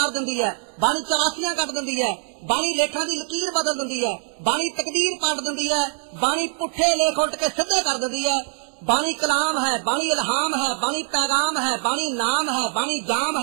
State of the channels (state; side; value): silent; left; 60 dB below the other